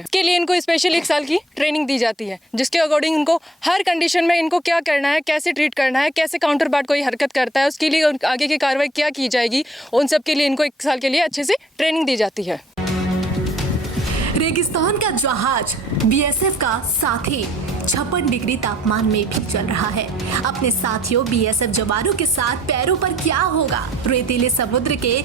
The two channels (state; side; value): normal; both; correlation 0.60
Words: लिए इनको स्पेशल 1 साल की ट्रेनिंग दी जाती है, जिसके अकॉर्डिंग इनको हर कंडीशन में इनको क्या करना है, कैसे ट्रीट करना है, कैसे काउंटर पार्ट कोई हरकत करता है, उसके लिए आगे की कार्रवाई क्या की जाएगी, उन सब के लिए इनको 1 साल के लिए अच्छे से ट्रेनिंग दी जाती है। रेगिस्तान का जहाज BSF का साथी 56 डिग्री तापमान में भी चल रहा है। अपने साथियों BSF जवानों के साथ पैरों पर क्या होगा, रेतीले समुद्र के